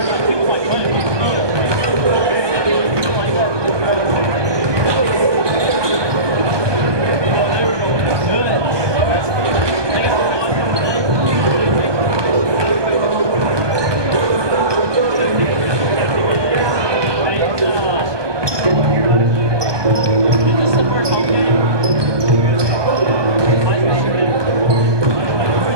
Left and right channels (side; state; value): left; late; 1.2 ms